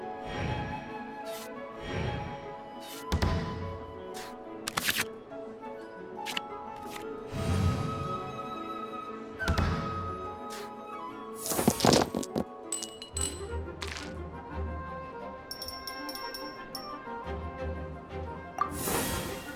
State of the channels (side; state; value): both; identical; correlation 1.00